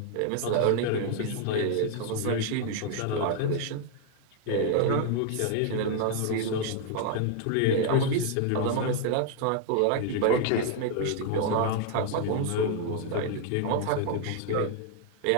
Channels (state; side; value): different; both; correlation 0.00